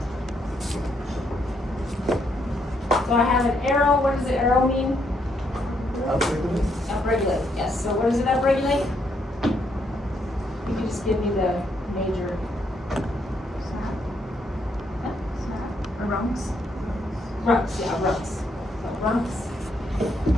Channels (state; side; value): normal; both; correlation 0.75